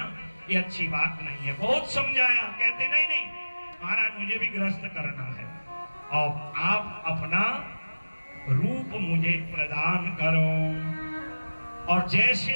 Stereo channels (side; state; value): both; inverted; correlation -1.00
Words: ये अच्छी बात नहीं है। बहुत समझाया, कहते नहीं नहीं महाराज मुझे भी गृहस्थ करना है, और आप अपना रूप मुझे प्रदान करो, और जैसे